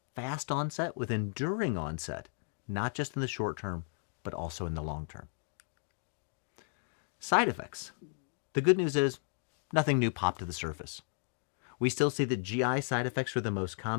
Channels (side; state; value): right; silent; 55 dB below the other